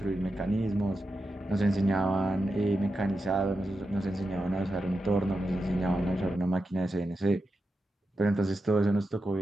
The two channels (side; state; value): both; normal; correlation 0.89